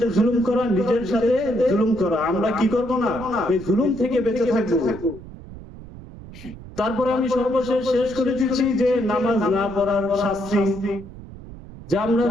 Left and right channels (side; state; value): right; noise; rumble, 15 dB below the sound